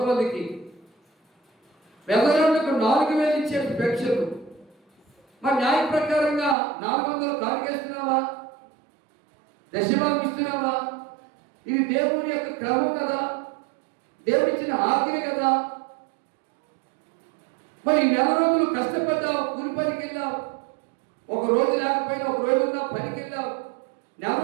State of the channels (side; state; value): left; drops out; at 6.6 s